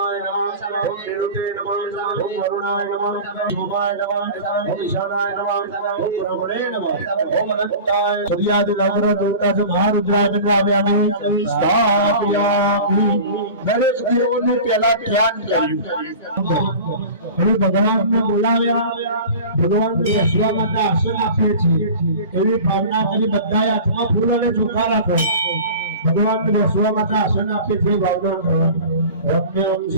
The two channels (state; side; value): inverted; both; correlation -0.37